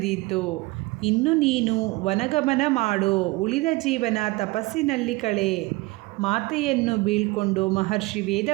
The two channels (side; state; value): left; quieter; 22.4 dB